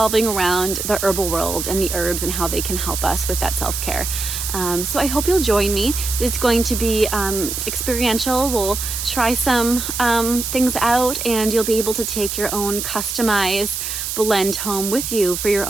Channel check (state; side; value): noise; right; hiss, 4 dB below the sound